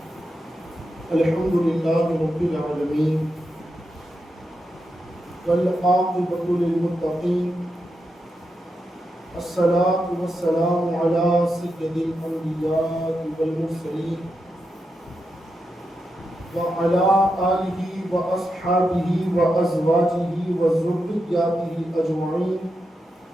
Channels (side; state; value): both; normal; correlation 0.86